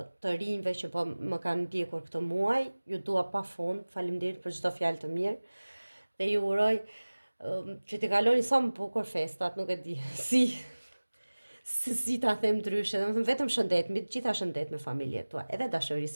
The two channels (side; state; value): both; inverted; correlation -1.00